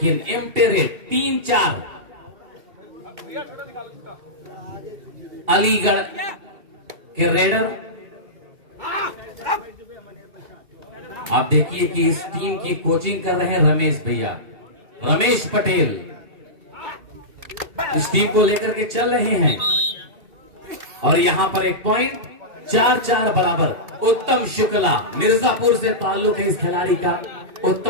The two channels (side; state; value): left; late; 2.7 ms